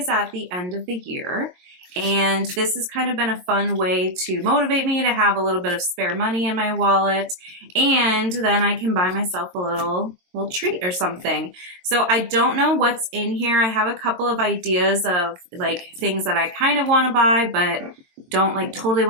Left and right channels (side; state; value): left; late; 22 ms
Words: at the end of the year. And this has kind of been a fun way to motivate me to have a little bit of spare money in my wallet. And then I can buy myself a little treat or something. So I don't know what's in here. I have a couple of ideas of like things that I kind of want to buy, but don't like totally